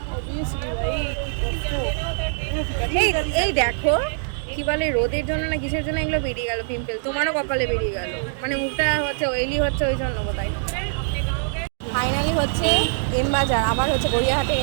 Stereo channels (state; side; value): silent; left; digital silence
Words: এই দেখো কি বলে, রোদের জন্য না কিসের জন্য এগুলো বেরিয়ে গেল পিম্পল। তোমারও কপালে বেরিয়ে গেল, মানে মুখটা হচ্ছে অয়েলি হচ্ছে ওই জন্য কোথায়। ফাইনালি হচ্ছে এম বাজার, আবার হচ্ছে গড়িয়াহাটের